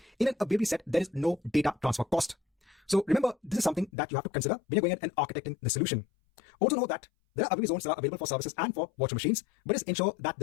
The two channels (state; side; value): drops out; right; at 3.9 s